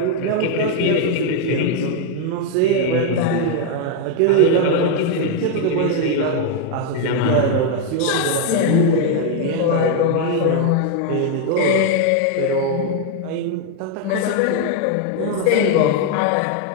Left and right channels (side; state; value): both; different; correlation 0.01